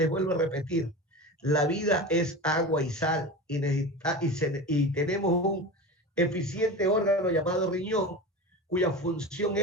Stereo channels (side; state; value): both; normal; correlation 0.28